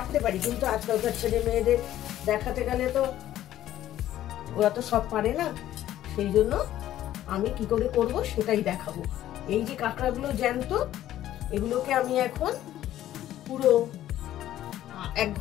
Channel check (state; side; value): quieter; right; 12.9 dB